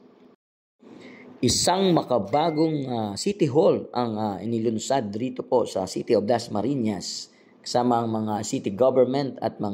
Isang makabagong City Hall ang inilunsad dito po sa City of Dasmariñas. Kasama ang mga city government at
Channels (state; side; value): identical; both; correlation 1.00